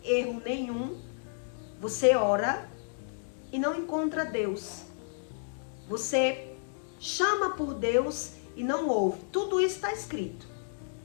erro nenhum, você ora e não encontra Deus. Você chama por Deus e não ouve. Tudo isso está escrito.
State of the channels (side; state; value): right; silent; digital silence